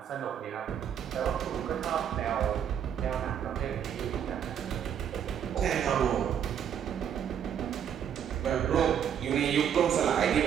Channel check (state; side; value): quieter; left; 8.8 dB